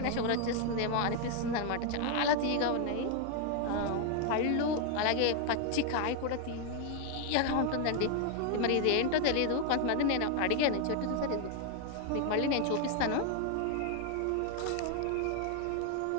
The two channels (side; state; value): both; different; correlation 0.00